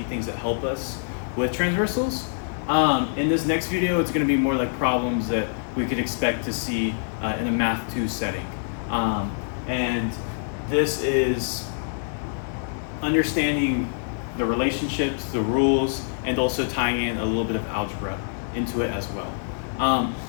things that help us with transversals. In this next video, it's going to be more like problems that we could expect to see in a Math 2 setting. And this is understanding the relationships, the rules, and also tying in a little bit of algebra into it as well.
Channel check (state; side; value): silent; right; 62 dB below the other